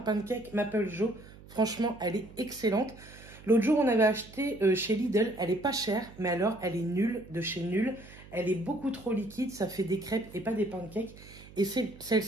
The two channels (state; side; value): noise; right; hum, 19 dB below the sound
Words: Maple Joe. Franchement, elle est excellente. L'autre jour, on avait acheté chez Lidl. Elle est pas chère, mais alors, elle est nulle de chez nulle. Elle est beaucoup trop liquide. Ça fait des crêpes et pas des pancakes. Et